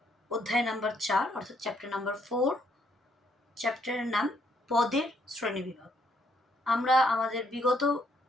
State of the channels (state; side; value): normal; both; correlation 0.71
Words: অধ্যায় নাম্বার 4 অর্থাৎ চ্যাপ্টার নাম্বার 4। চ্যাপ্টারের নাম পদের শ্রেণীবিভাগ। আমরা আমাদের বিগত